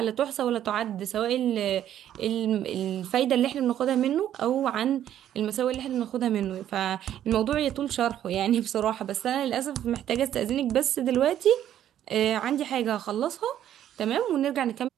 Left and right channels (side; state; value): left; quieter; 11.1 dB